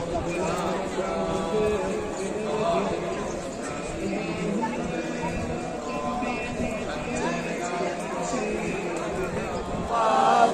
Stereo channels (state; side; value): identical; both; correlation 1.00